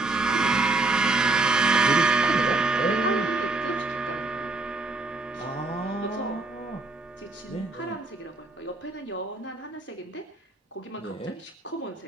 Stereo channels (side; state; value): left; quieter; 3.2 dB